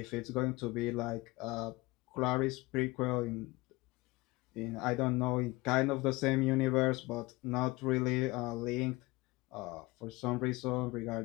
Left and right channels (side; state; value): right; quieter; 22.0 dB